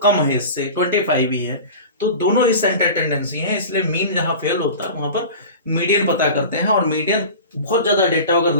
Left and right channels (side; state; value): both; inverted; correlation -0.35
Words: कम है, इससे 25 ही है। तो दोनों ही सेंटर टेंडेंसी है, इसलिए मीन जहां फेल होता है वहां पर मीडियन पता करते हैं। और मीडियन बहुत ज्यादा डेटा अगर